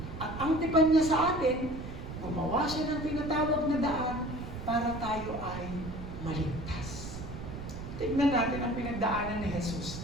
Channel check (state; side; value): noise; right; rumble, 9 dB below the sound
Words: At ang tipan niya sa atin, gumawa siya ng tinatawag na daan para tayo ay maligtas. Tignan natin ang pinagdaanan ni Jesus